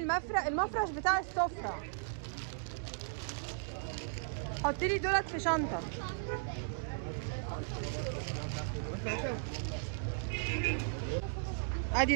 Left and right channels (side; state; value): left; silent; digital silence